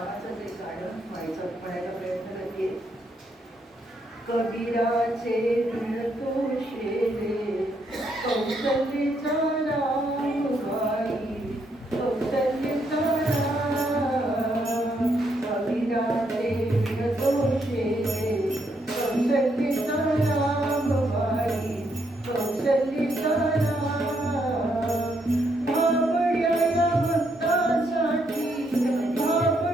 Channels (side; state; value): both; normal; correlation 0.76